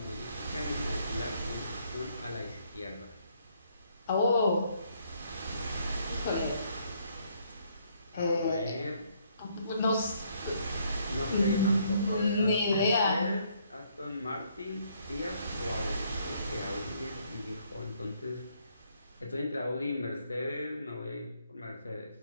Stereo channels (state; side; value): inverted; both; correlation -0.69